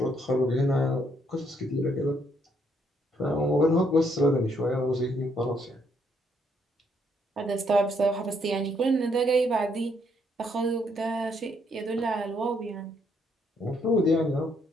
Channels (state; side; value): normal; both; correlation 0.72